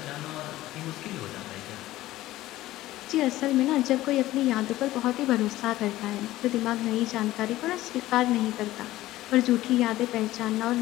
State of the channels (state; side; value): quieter; right; 16.0 dB